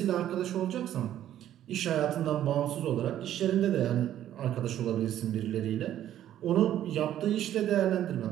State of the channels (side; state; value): left; quieter; 11.7 dB